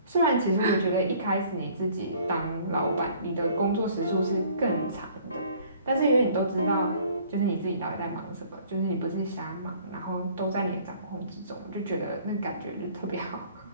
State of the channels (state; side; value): inverted; both; correlation -0.56